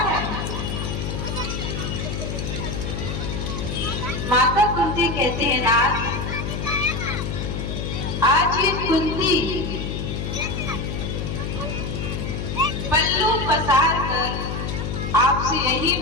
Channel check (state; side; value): noise; left; hum, 4 dB below the sound